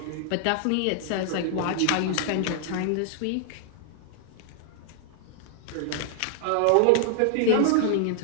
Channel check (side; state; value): both; different; correlation 0.00